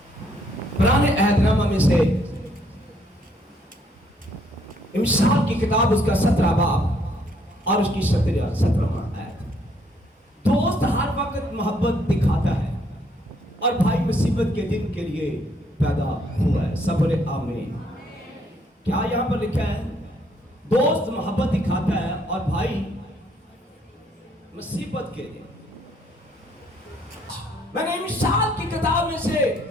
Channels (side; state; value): both; normal; correlation 0.68